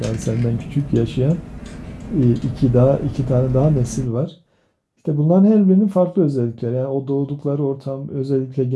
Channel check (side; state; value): both; identical; correlation 1.00